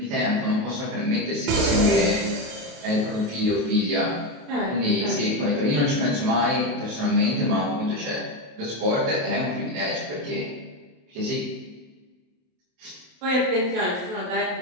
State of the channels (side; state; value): left; late; 28 ms